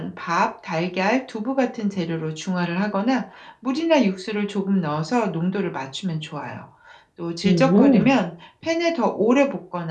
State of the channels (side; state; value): both; identical; correlation 1.00